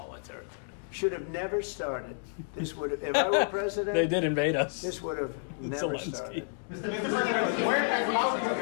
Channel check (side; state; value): right; silent; digital silence